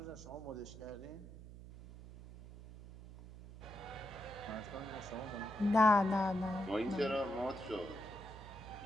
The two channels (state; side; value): noise; right; hum, 15 dB below the sound